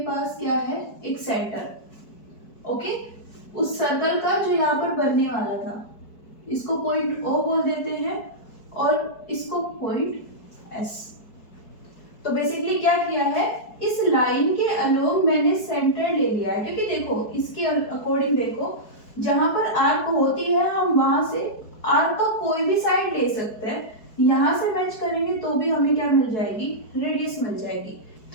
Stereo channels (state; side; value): late; right; 4.7 ms